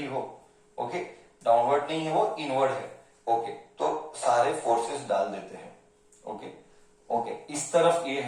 हो, ओके? डाउनवर्ड नहीं है वो, इनवर्ड है, ओके? तो सारे फोर्सेस डाल देते हैं, ओके? ओके, इस तरफ ये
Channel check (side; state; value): both; identical; correlation 1.00